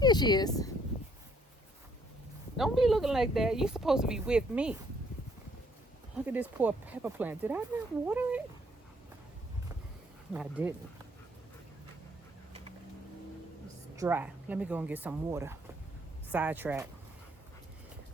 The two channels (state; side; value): normal; both; correlation 0.66